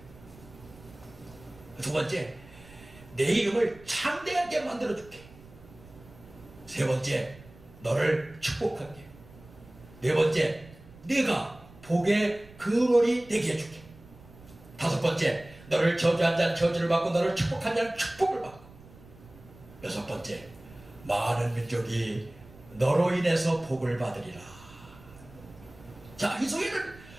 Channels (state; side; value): noise; right; rumble, 21 dB below the sound